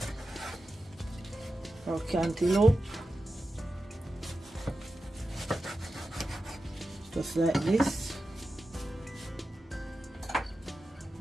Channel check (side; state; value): both; normal; correlation 0.92